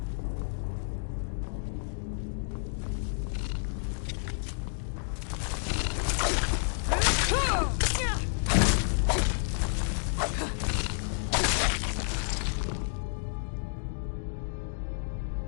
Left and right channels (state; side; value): silent; right; digital silence